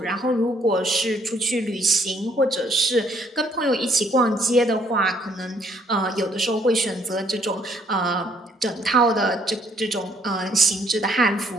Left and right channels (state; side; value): normal; both; correlation 0.66